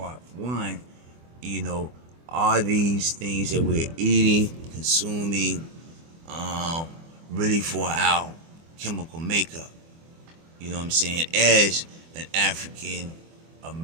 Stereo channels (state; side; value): late; left; 24 ms